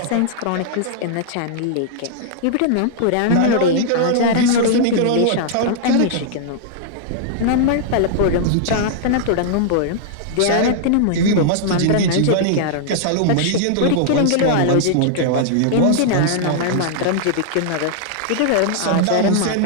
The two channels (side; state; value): both; different; correlation -0.01